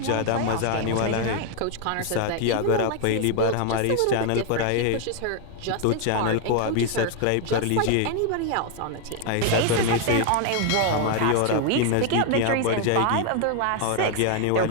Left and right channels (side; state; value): both; different; correlation 0.00